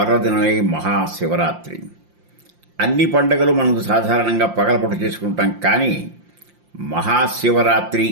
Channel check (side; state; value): left; late; 5.7 ms